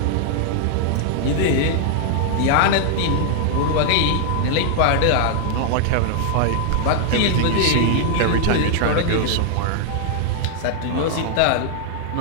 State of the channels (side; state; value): both; different; correlation -0.01